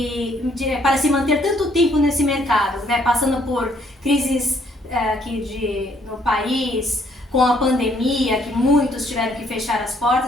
para se manter tanto tempo nesse mercado, né? Passando por crises aqui no país, com a pandemia, que muitos tiveram que fechar as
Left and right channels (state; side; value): normal; both; correlation 0.66